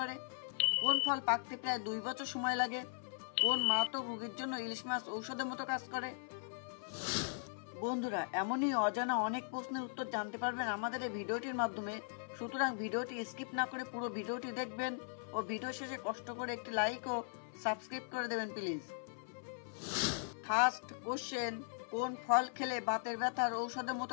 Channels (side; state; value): right; silent; 52 dB below the other